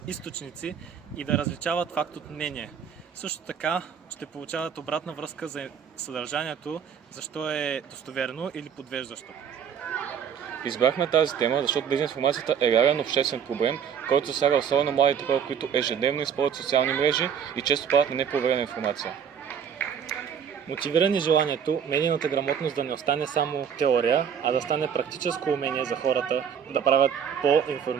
източници и да различават факт от мнение. Също така ще получават обратна връзка за съдържанието, защо е достоверно или подвеждащо. Избрахме тази тема, защото дезинформацията е реален обществен проблем, който засяга особено младите хора, които ежедневно използват социални мрежи и често падат на непроверена информация. Мотивирани желанието медийната грамотност да не остане само теория, а да стане практическо умение за хората да правят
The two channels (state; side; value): quieter; left; 7.8 dB